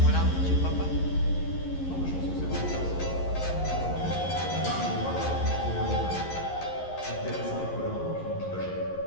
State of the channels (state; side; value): late; right; 11 ms